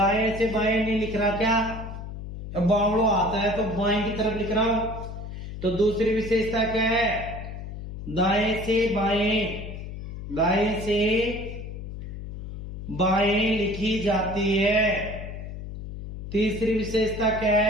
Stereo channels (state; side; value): noise; left; hum, 9 dB below the sound